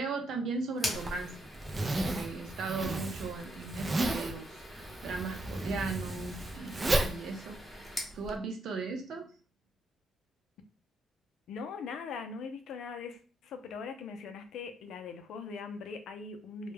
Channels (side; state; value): both; normal; correlation 0.78